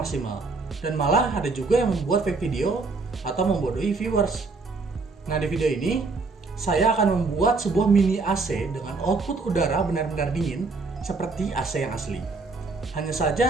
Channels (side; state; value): left; quieter; 4.0 dB